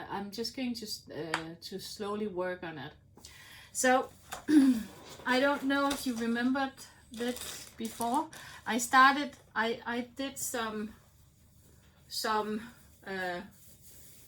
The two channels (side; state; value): both; identical; correlation 1.00